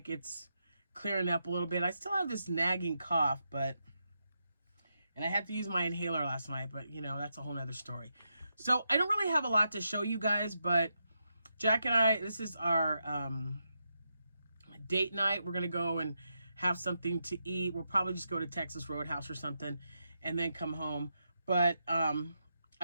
it's clearing up a little bit. I still have this nagging cough, and I had to use my inhaler last night, but you know, that's a whole nother story. So I don't really have a lot to show you guys, but Jack and I, this is our date night. We're going to go and have something to eat. We'll probably just go to Texas Roadhouse or something and then come home. But I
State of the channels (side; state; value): both; inverted; correlation -0.84